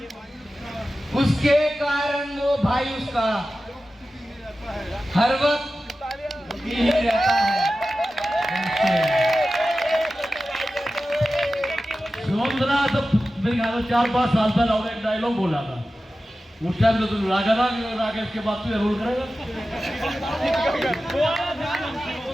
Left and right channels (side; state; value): both; normal; correlation 0.94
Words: उसके कारण वो भाई उसका हर वक्त ही रहता है। सुमंत्रा तो मेरे ख्याल में 4-5 साल पहले और एक डायलॉग बोला था। उस टाइम तो तुम रागा था, राकेश के बाद तो रोल करेगा।